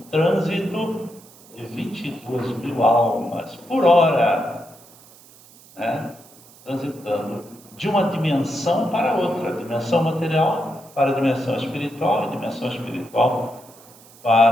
trânsito de 22 mil almas por hora, né? Transitando de uma dimensão para outra, dimensão material para a dimensão espiritual e dimensão espiritual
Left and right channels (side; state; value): right; noise; hiss, 24 dB below the sound